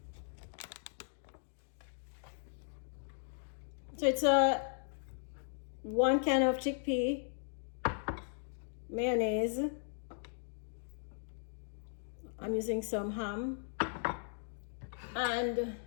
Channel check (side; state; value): right; silent; digital silence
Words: So it's a 1 can of chickpea, mayonnaise. I'm using some ham and